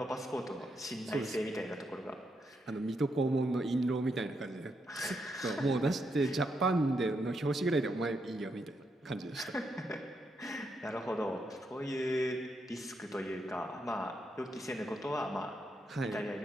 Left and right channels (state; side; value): normal; both; correlation 0.80